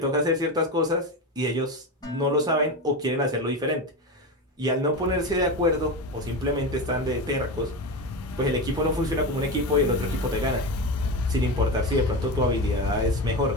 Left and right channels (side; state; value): both; normal; correlation 0.21